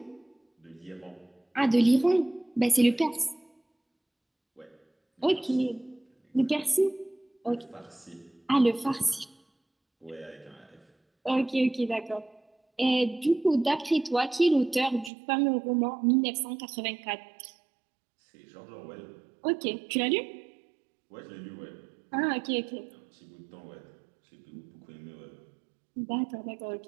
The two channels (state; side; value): drops out; left; at 15.1 s